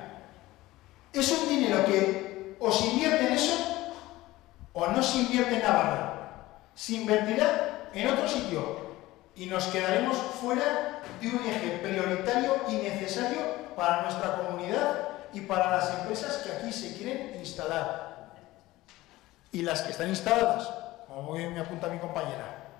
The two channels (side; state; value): right; quieter; 17.9 dB